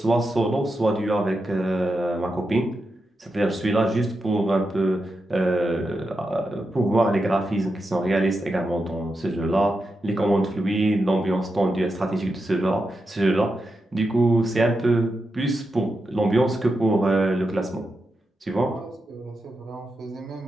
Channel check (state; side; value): normal; both; correlation 0.87